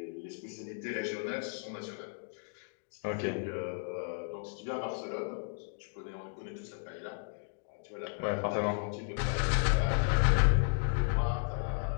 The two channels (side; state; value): right; silent; digital silence